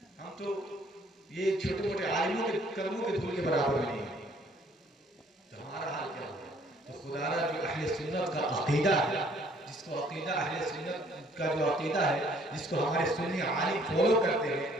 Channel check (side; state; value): both; normal; correlation 0.61